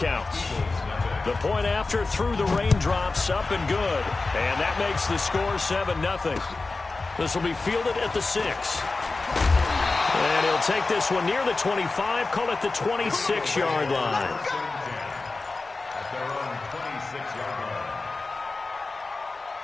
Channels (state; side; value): quieter; right; 3.6 dB